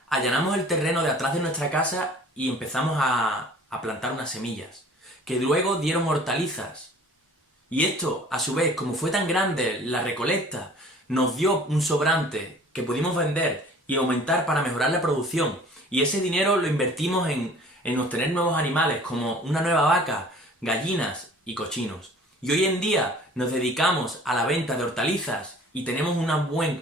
allanamos el terreno de atrás de nuestra casa y empezamos a plantar unas semillas, que luego dieron hortalizas. Y esto, a su vez, como fue tan grande la recolecta, nos dio un sobrante que pudimos vender y aumentar para mejorar la producción. Y ese dinero lo invertimos en obtener nuevos animales, como una nueva vaca, gallinas y cochinos. Y hoy en día nos dedicamos a la venta de hortalizas y tenemos un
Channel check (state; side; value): normal; both; correlation 0.49